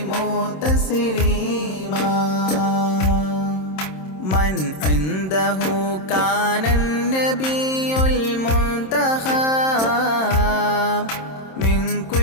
تسليما من عنده كان النبي المنتخب من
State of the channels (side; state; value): right; late; 27 ms